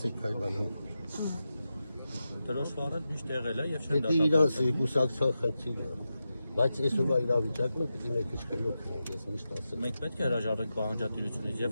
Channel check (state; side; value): inverted; both; correlation -0.90